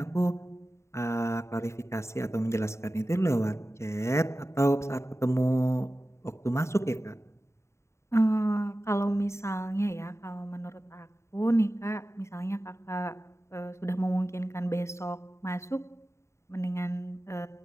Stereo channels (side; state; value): right; late; 0.14 ms